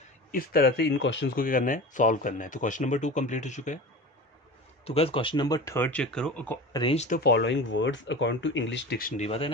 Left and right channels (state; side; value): normal; both; correlation 0.33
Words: इस तरह से इन क्वेश्चंस को क्या करना है, सॉल्व करना है। तो क्वेश्चन नंबर 2 कंप्लीट हो चुका है। तो गाइस क्वेश्चन नंबर 3 चेक करो, arrange the following words according to English dictionary. पता है ना